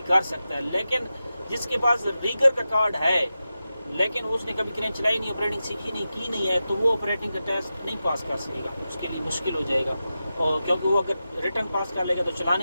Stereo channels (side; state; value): both; inverted; correlation -0.92